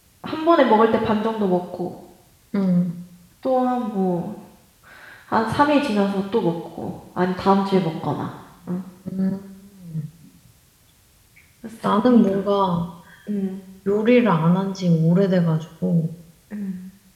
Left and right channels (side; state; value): both; identical; correlation 1.00